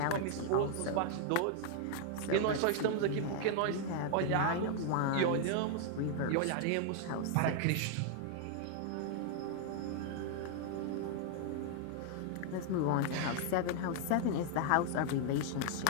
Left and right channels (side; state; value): both; different; correlation 0.00